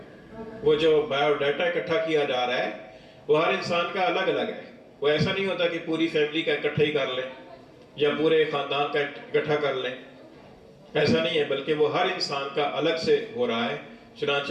وہ جو بایو ڈیٹا اکٹھا کیا جا رہا ہے وہ ہر انسان کا الگ الگ ہے. وہ ایسا نہیں ہوتا کہ پوری فیملی کا اکٹھا ہی کر لیں یا پورے خاندان کا اکٹھا کر لیں، ایسا نہیں ہے، بلکہ وہ ہر انسان کا الگ سے ہو رہا ہے.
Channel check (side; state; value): both; identical; correlation 1.00